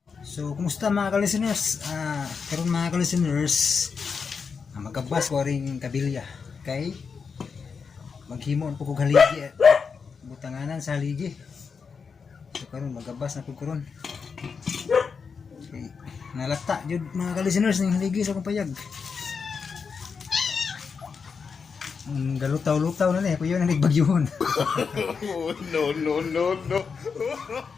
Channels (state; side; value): quieter; right; 5.6 dB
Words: So, kumusta mga ka-listeners? Karon mga ka-listeners, magabas ko rin kabilya. Okay? Maghimon po kong haligi. Butanganan sa haligi. So, karon magabas na po karon. Okay. Nalata, jud mga ka-listeners ng haligi sa kong payag. Galutaw-lutaw na kuya na nagbagyuhon. No.